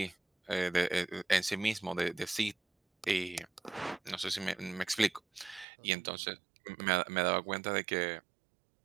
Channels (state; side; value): drops out; left; at 5.7 s